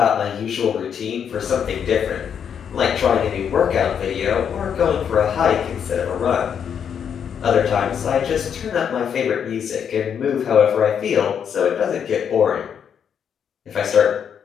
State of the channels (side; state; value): right; quieter; 7.9 dB